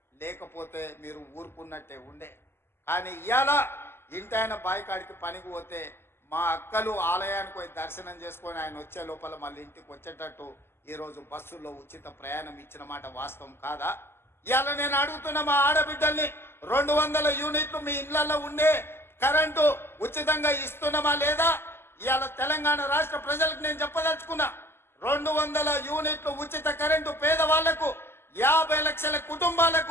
లేకపోతే మీరు ఊరుకున్నట్టే ఉండే. కానీ ఇవాళ ఇంటి ఆయన బాయికాడికి పనికి పోతే మా అక్కలు ఆలయానికి పోయి దర్శనం చేసుకొని ఆయన వచ్చే లోపల మళ్ళీ ఇంటికి వచ్చేటట్టు ఈరోజు బస్సుల్లో ఉచిత ప్రయాణం ఇచ్చిన మాట వాస్తవం కాదా? ఇవాళ నేను అడుగుతున్న మా ఆడబిడ్డల్ని, 200 యూనిట్లు మీ ఇళ్లలో ఉండే కరెంటు ఉచితంగా ఇస్తున్నామా లేదా? ఇవాళ తెలంగాణ రాష్ట్ర ప్రజలకు నేను చెప్పదలుచుకున్నా, 200 యూనిట్లు ఉచిత కరెంటు పేదవాళ్లకు, 50 లక్షల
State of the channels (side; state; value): right; late; 0.12 ms